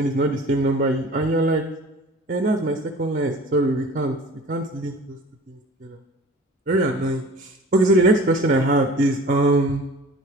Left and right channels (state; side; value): normal; both; correlation 0.43